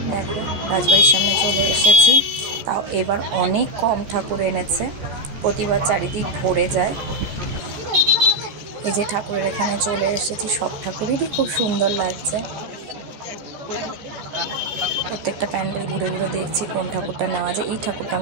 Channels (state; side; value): late; left; 14 ms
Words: দেখো রাজবাড়ির সামনে চলে এসেছি, তাও এবার অনেক কম ঠাকুর এনেছে, প্রতিবার চারিদিক ভরে যায়। এই যে ঠাকুরের এখানে চলে এসেছি, সব ঠাকুরেরই খুব সুন্দর লাগছে। প্রত্যেকটা প্যান্ডেল ঘুরে ঘুরে দেখছি কোন ঠাকুরটা নেওয়া যায়। এই ঠাকুরটা